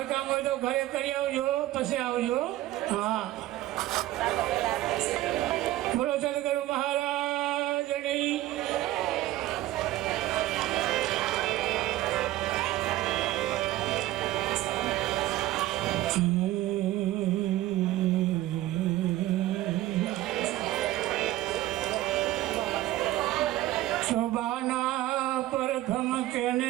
હોય તો ઘરે કરી આવજો, પછી આવજો. હા, બોલો સદગુરુ મહારાજની. શોભાના પ્રથમ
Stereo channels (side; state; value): left; quieter; 15.6 dB